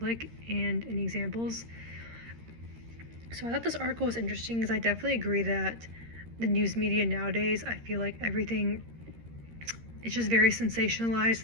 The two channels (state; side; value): late; left; 13 ms